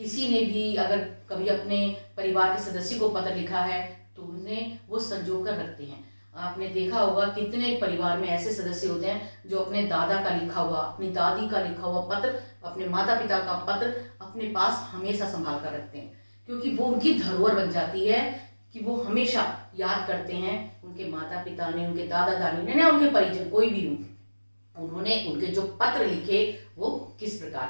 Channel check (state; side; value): inverted; both; correlation -1.00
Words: ने भी अगर कभी अपने परिवार के सदस्य को पत्र लिखा है तो उन्हें वो संजो कर रखते हैं। आपने देखा होगा कितने परिवार में ऐसे सदस्य होते हैं जो अपने दादा का लिखा हुआ, अपनी दादी का लिखा हुआ पत्र, अपने माता पिता का पत्र अपने पास हमेशा संभाल कर रखते हैं, क्योंकि वो उनकी धरोहर बन जाती है कि वो हमेशा याद करते हैं उनके माता पिता ने, उनके दादा दादी ने, उनके परिजन कोई भी हो, उन्होंने उनके जो पत्र लिखे वो किस